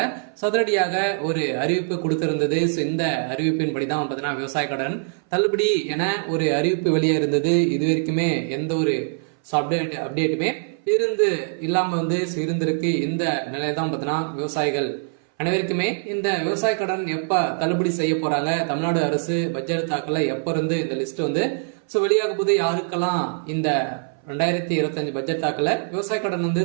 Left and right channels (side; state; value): left; silent; 59 dB below the other